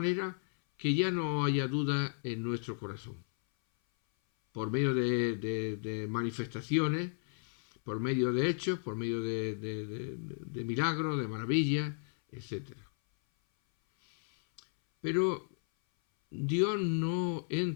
que ya no haya duda en nuestro corazón, por medio de manifestaciones, por medio de hechos, por medio de milagros, de maravillas, etc. Pero Dios no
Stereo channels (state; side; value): silent; right; 55 dB below the other